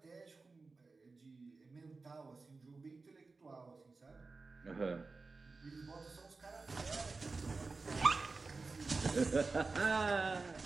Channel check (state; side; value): quieter; left; 4.0 dB